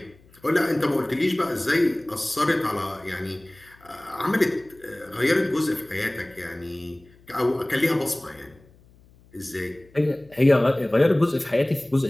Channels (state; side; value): noise; left; hum, 28 dB below the sound